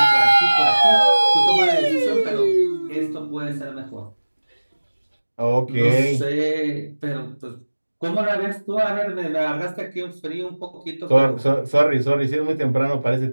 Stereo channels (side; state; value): both; inverted; correlation -1.00